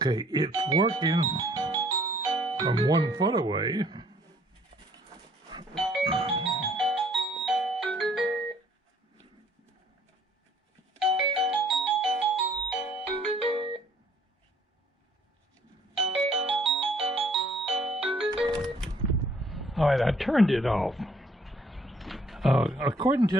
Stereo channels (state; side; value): normal; both; correlation 0.61